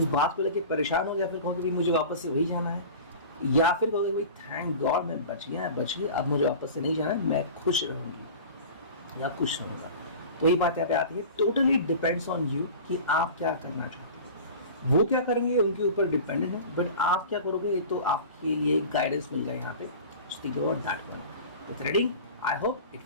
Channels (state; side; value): inverted; both; correlation -0.37